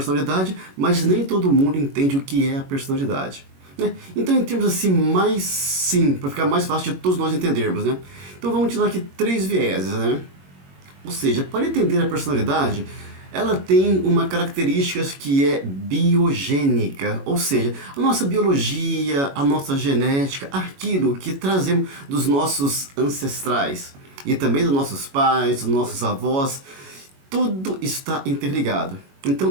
mas nem todo mundo entende o que é a personalidade, né? Então, em termos assim, para ficar mais fácil de todos nós entendermos, né? Então, vamos utilizar aqui 3 vieses, né? Ou seja, para entender a personalidade, ela tem uma característica que é biogênica, ou seja, a nossa biologia, a nossa genética, aquilo que trazemos dos nossos ancestrais e também dos nossos pais, dos nossos avós, tudo está interligado.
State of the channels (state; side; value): late; left; 21 ms